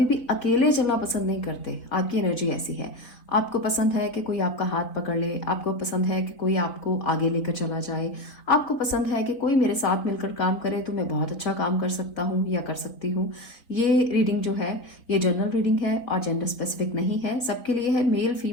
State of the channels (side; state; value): right; late; 4.1 ms